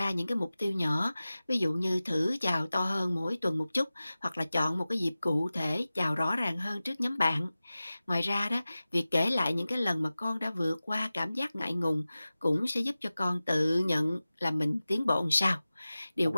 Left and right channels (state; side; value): inverted; both; correlation -0.96